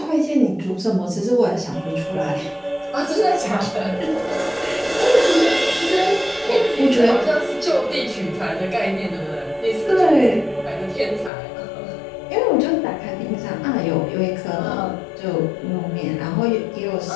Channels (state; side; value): drops out; right; at 11.3 s